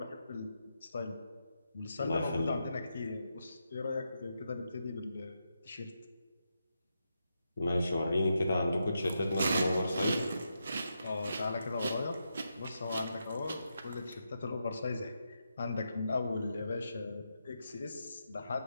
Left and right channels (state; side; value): inverted; both; correlation -0.85